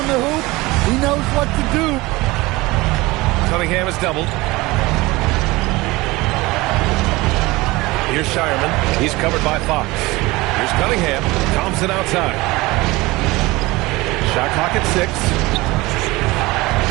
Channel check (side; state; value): left; quieter; 21.3 dB